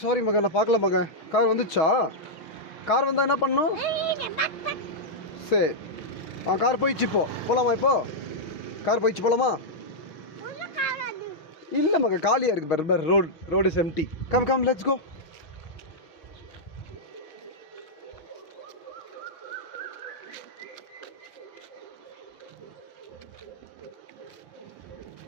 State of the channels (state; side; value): late; right; 6.3 ms